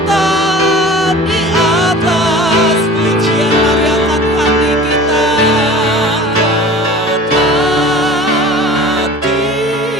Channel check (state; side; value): normal; both; correlation 0.41